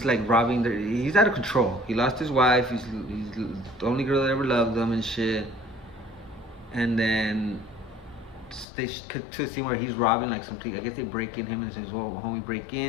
like robbing he's out of control. He lost his wife. He's the only girl that ever loved him and shit. And then they cut to a scene where he's robbing like something. I guess they break in him and says, "Well, homie, break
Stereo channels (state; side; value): drops out; right; at 8.7 s